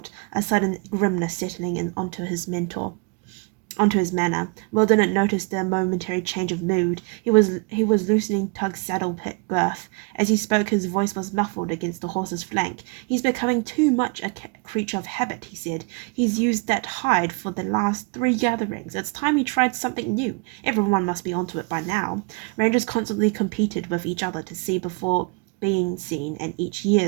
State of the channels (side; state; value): left; quieter; 30.8 dB